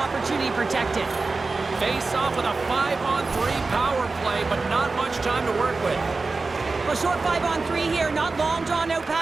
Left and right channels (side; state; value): left; quieter; 3.8 dB